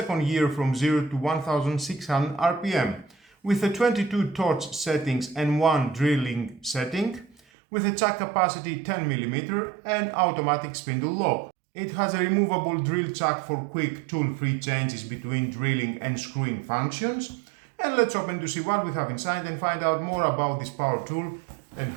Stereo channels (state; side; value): drops out; left; at 7.4 s